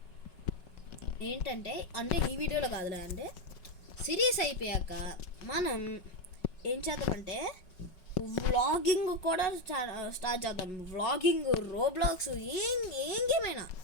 ఏంటంటే ఈ వీడియోలో కాదులే, అంటే సిరీస్ అయిపోయాక మనం ఏం చేద్దామంటే వ్లాగింగ్ కూడా స్టార్ట్ చేద్దాం. వ్లాగింగ్, రోబ్లాక్స్, ఏం గేమ్ అయినా,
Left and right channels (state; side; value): late; right; 5.4 ms